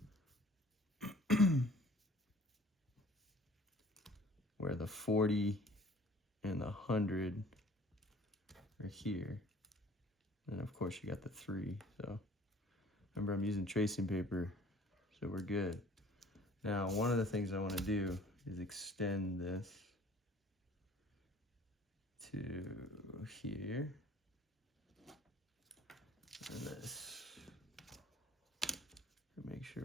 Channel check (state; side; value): normal; both; correlation 0.52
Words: Where the 40 and the 100 are here. And of course you got the 3. So remember, I'm using tracing paper, so we're good. Now, one of the things I want to do is extend this to here. And this. Make sure